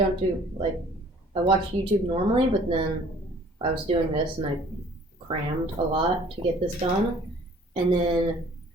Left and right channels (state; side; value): normal; both; correlation 0.54